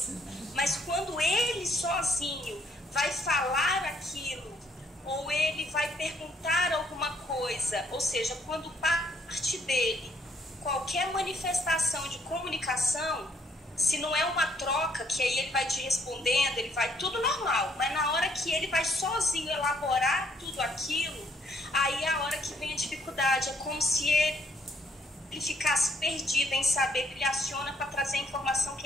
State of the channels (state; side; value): normal; both; correlation 0.67